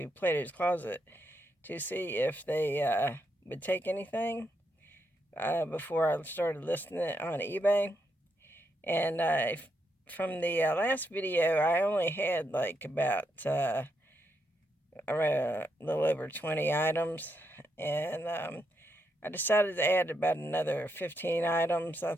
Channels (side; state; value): both; normal; correlation 0.80